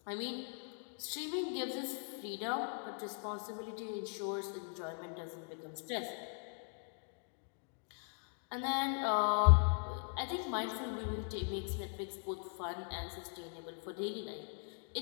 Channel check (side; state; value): right; silent; 51 dB below the other